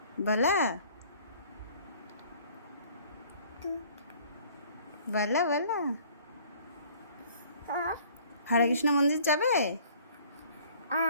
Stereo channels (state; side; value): inverted; both; correlation -0.55